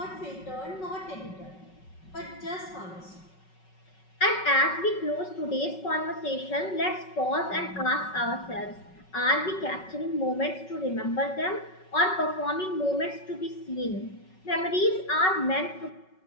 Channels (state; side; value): late; right; 5.4 ms